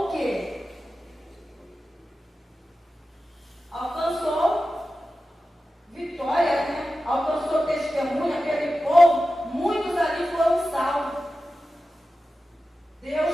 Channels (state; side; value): normal; both; correlation 0.93